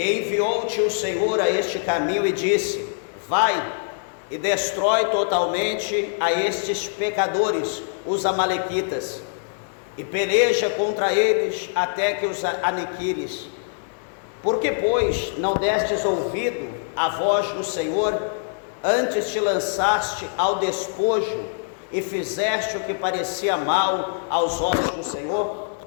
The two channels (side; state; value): right; silent; digital silence